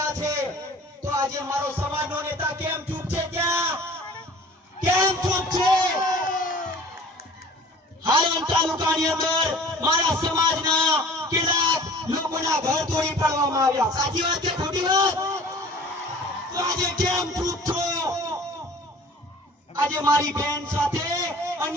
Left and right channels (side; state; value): both; normal; correlation 0.46